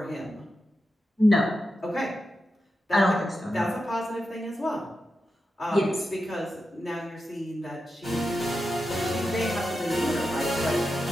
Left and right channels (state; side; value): normal; both; correlation 0.90